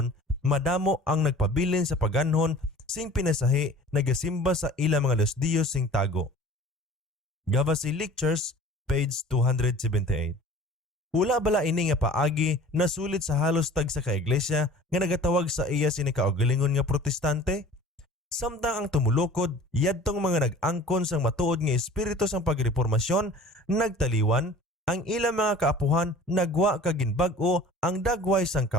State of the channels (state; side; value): normal; both; correlation 0.45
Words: madamo ang nagpabilin sa paganhon sing pinasahi nagasimba sa ilang mga Diyos sing tago. Gavazi Lectures, page 278. Wala bala ini nga paagi na sulit sa halos tag sa kaiglesia nga nagatawag sa iya sini kaugalingon nga protestante? Samtang ang tumulukod, yadtong mga nag-angkon sang matuod nga espiritu sang pagreformasyon, nagtaliwan, ang ilang mga kaapuhan nagwa kag ginbag-o ang dagway sang